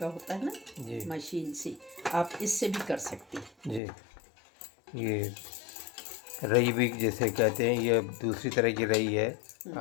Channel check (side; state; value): right; drops out; at 3.8 s